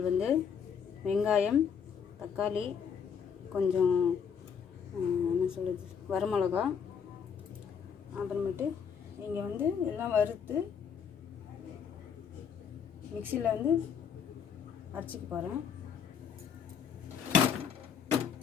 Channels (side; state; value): right; quieter; 7.2 dB